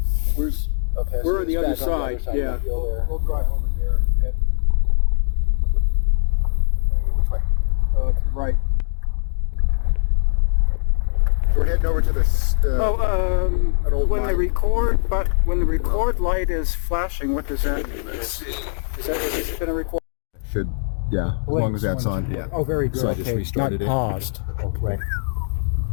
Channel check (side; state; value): right; silent; digital silence